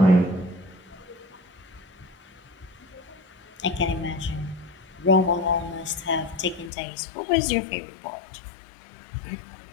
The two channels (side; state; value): right; drops out; at 6.7 s